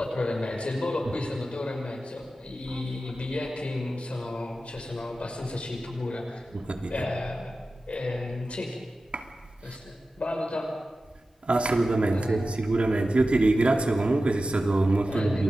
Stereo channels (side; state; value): both; normal; correlation 0.94